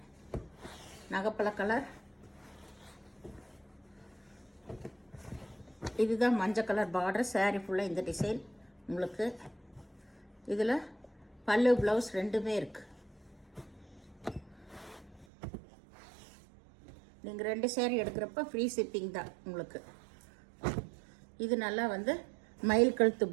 இதுதான் மஞ்சள் கலர் பார்டர். சாரீ ஃபுல்லாக இந்த டிசைன் உங்களுக்கு. இதில் பல்லு ப்ளவுஸ் 2மே இருக்குது. நீங்கள் 2 சாரீ எடுக்கிறப்ப ஃப்ரீ ஷிப்பிங் தான் உங்களுக்கு. இது நல்லா வந்து மயில் கழுத்து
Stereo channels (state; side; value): drops out; left; at 15.2 s